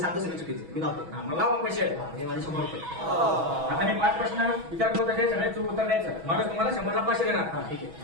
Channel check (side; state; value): left; late; 6.2 ms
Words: सगळी चुकीची मी लावतो. हा, मग लावा पैसे. हे माझे 100 रुपये. आता मी 5 प्रश्न विचारतो त्याचे सगळे चूक उत्तर द्यायचं. मग तुम्हाला 100ला 500 देणार. हा ठीक